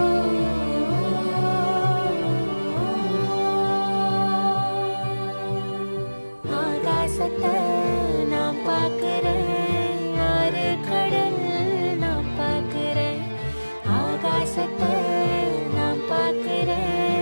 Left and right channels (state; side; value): inverted; both; correlation -1.00